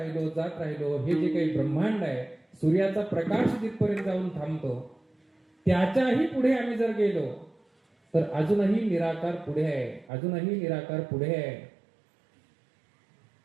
जात राहिलो. हे जे काही ब्रह्मांड आहे, सूर्याचा प्रकाश जिथपर्यंत जाऊन थांबतो, त्याच्याही पुढे आम्ही जर गेलो तर अजूनही निराकार पुढे आहे, अजूनही निराकार पुढे आहे.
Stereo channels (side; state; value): left; drops out; at 10.1 s